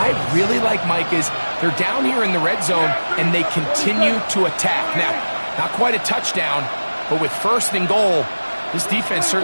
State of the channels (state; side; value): inverted; both; correlation -1.00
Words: really like, Mike, is they're down here in the red zone, and they continue to attack. Now, not quite a touchdown, but with first and goal, this defense